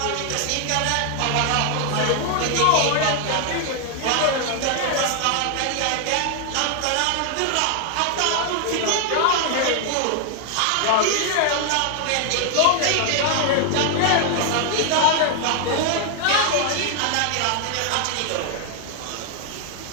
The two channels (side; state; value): both; different; correlation 0.00